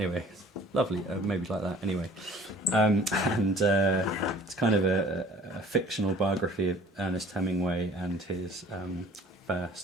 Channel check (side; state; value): both; normal; correlation 0.50